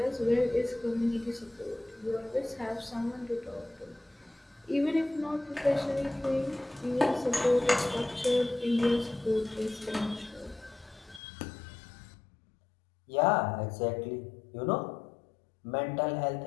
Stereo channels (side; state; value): right; drops out; at 11.2 s